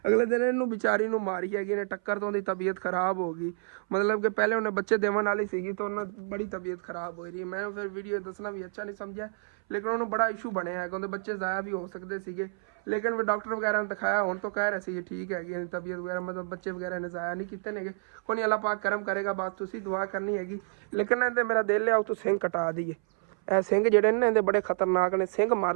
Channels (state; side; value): silent; left; 58 dB below the other